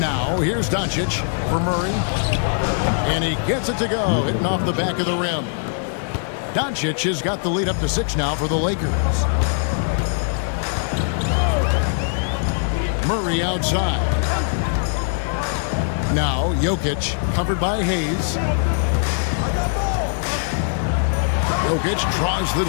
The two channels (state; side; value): silent; right; 65 dB below the other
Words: here's Doncic for Murray. And he gets it to go, hitting off the back of the rim. Doncic has got the lead up to 6 now for the Lakers. Murray outside. Now Jokic covered by Hayes. Jokic draws the